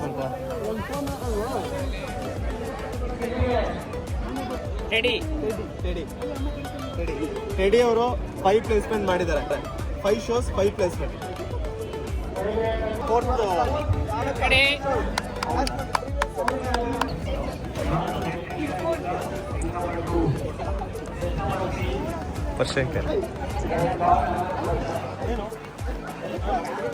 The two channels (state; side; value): identical; both; correlation 1.00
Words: ಬಂತ. ಟೆಡಿ ಅವರು 5 ಪ್ಲೇಸ್ಮೆಂಟ್ ಮಾಡಿದ್ದಾರೆ. 5 shows 5 ಪ್ಲೇಸ್ಮೆಂಟ್. ಫೋರ್ತ್ ಪರ್ಶಂಕರ್.